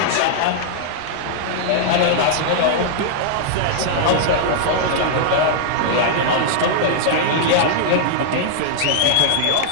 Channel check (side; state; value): both; different; correlation -0.01